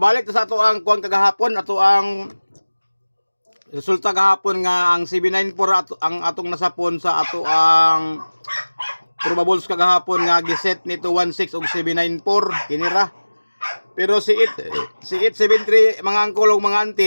sa ato ang kuan kagahapon, ato ang resulta gahapon nga ang 794 ang atong nasapon sa ato ang probables kagahapon nga giset ni 216 og 794 kinira. Pero si 873 mga angkol ug mga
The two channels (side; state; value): both; inverted; correlation -1.00